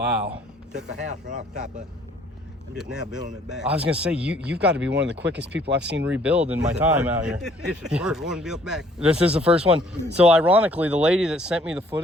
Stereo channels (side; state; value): both; normal; correlation 0.60